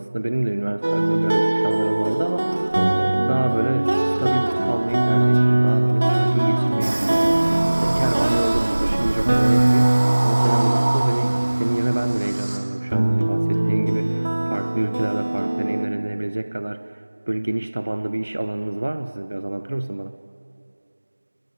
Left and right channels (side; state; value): both; inverted; correlation -1.00